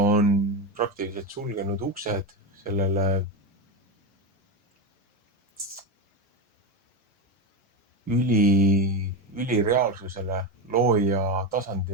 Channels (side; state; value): both; normal; correlation 0.14